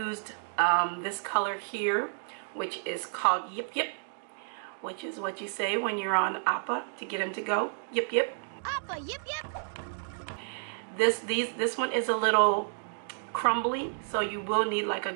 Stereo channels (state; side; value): silent; left; digital silence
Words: this color here, which is called Yip Yip, which is what you say when you're on Appa to get him to go. Yip Yip. Appa, yip yip. This one is a little crumbly, so you will need like a